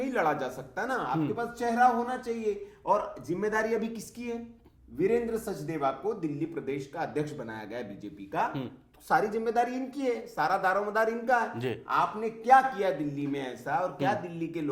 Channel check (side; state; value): both; identical; correlation 1.00